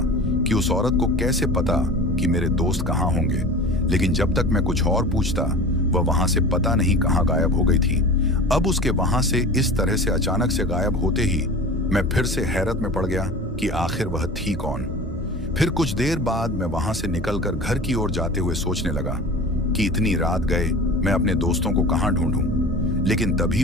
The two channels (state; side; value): normal; both; correlation 0.36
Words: कि उस औरत को कैसे पता कि मेरे दोस्त कहां होंगे। लेकिन जब तक मैं कुछ और पूछता, वह वहां से पता नहीं कहां गायब हो गई थी। अब उसके वहां से इस तरह से अचानक से गायब होते ही मैं फिर से हैरत में पड़ गया कि आखिर वह थी कौन। फिर कुछ देर बाद मैं वहां से निकलकर घर की ओर जाते हुए सोचने लगा कि इतनी रात गए मैं अपने दोस्तों को कहां ढूंढूं। लेकिन तभी